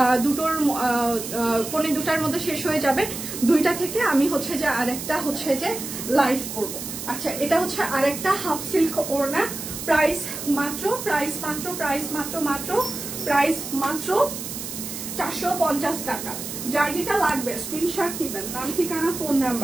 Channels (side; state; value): right; noise; hiss, 8 dB below the sound